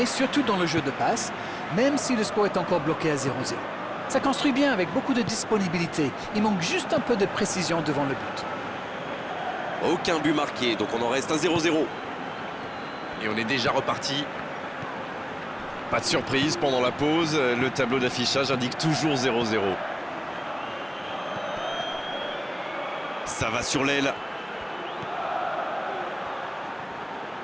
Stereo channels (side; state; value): both; identical; correlation 1.00